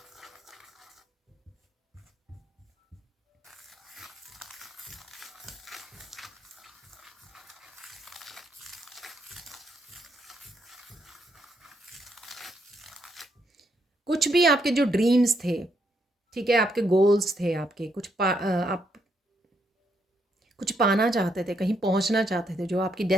कुछ भी आपके जो ड्रीम्स थे, ठीक है, आपके गोल्स थे, आपके आप कुछ पाना चाहते थे, कहीं पहुंचना चाहते थे, जो आपकी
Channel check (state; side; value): normal; both; correlation 0.76